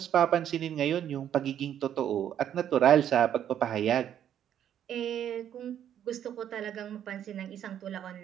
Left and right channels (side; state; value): left; quieter; 10.1 dB